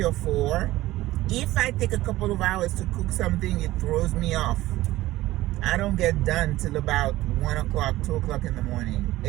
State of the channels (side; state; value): left; quieter; 16.7 dB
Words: or 4. If I take a couple of hours to cook something, it throws me off. I don't get done till about 1 o'clock, 2 o'clock in the morning.